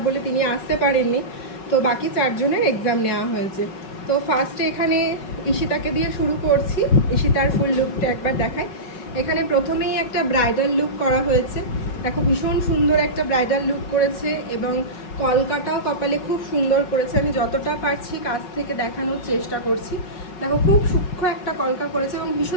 বলে তিনি আসতে পারেননি, তো বাকি 4জনের এক্সাম নেওয়া হয়েছে। তো ফার্স্টে এখানে ঈশিতাকে দিয়ে শুরু করছি। ঈশিতার ফুল লুকটা একবার দেখায়। এখানে প্রথমেই একটা ব্রাইডাল লুক করা হয়েছে। দেখো ভীষণ সুন্দর একটা ব্রাইডাল লুক করেছে, এবং কলকাটাও কপালে খুব সুন্দর করেছে। আমি যতটা পারছি কাছ থেকে দেখানোর চেষ্টা করছি। দেখো খুব সূক্ষ্ম একটা কলকা করেছে এবং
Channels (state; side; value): late; right; 5.2 ms